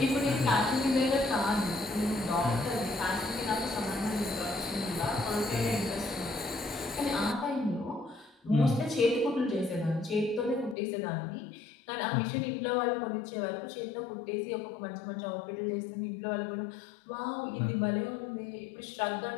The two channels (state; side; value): drops out; right; at 10.8 s